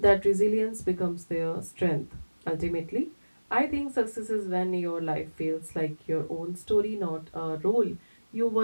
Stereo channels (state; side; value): inverted; both; correlation -1.00